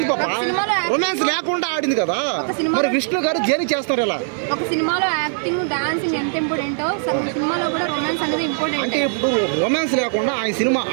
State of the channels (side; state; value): left; silent; 59 dB below the other